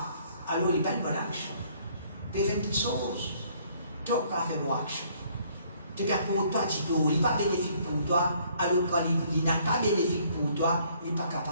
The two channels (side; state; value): both; inverted; correlation -0.63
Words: alors il n'y a pas une bonne action. Tu fais une petite chose, tu vas faire une bonne action. Tu as pour toi, tito, il n'est pas bénéfique pour toi, alors quand il n'a pas bénéfique pour toi, il n'est pas